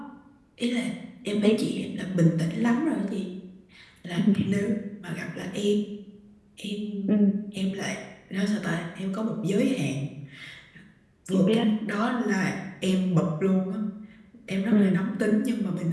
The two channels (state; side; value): identical; both; correlation 1.00